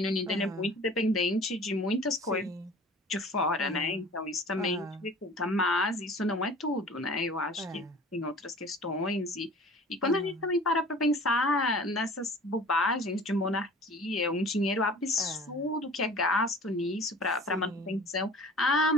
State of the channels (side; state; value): both; normal; correlation 0.44